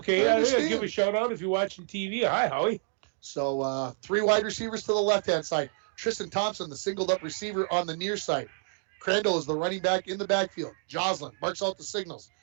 I'll give a shout out if you're watching TV. Hi, Howie." So 3 wide receivers to the left-hand side. Tristan Thompson, the singled-up receiver on the near side. Crandall is the running back in the backfield. Joslin marks out the signals.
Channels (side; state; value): left; silent; digital silence